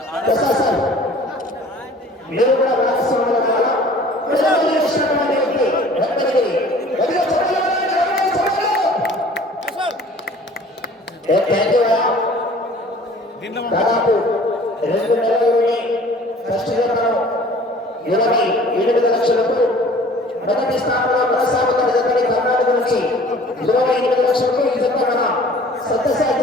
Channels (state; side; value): normal; both; correlation 0.49